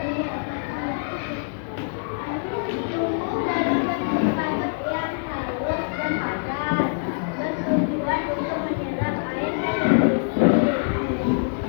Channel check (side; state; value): right; silent; digital silence